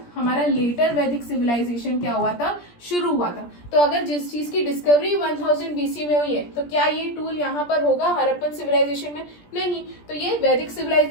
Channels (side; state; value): right; late; 17 ms